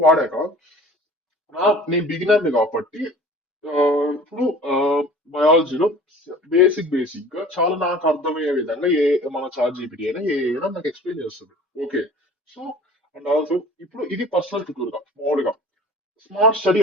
వాడాక నేను బిగినర్ కాబట్టి ఆ, ఇప్పుడు బయాలజీలో బేసిక్ గా చాలా నాకు అర్థమయ్యే విధంగా మన చాట్ జీపీటీ అయినా ఏ అయినా నాకు ఎక్స్ప్లెయిన్ చేస్తుంది. ఓకే. సో అండ్ ఆల్సో ఇప్పుడు ఇది పర్సనల్ ట్యూటర్ గా మామూలుగా స్మార్ట్ స్టడీ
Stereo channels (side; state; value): both; normal; correlation 0.44